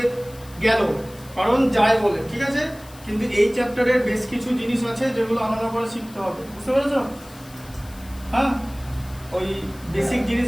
গেল কারণ যায় বলে, ঠিক আছে, কিন্তু এই চ্যাপ্টারের বেশ কিছু জিনিস আছে যেগুলো আলাদা করে শিখতে হবে, বুঝতে পেরেছো? হ্যাঁ, ওই বেসিক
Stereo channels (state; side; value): noise; left; hiss, 22 dB below the sound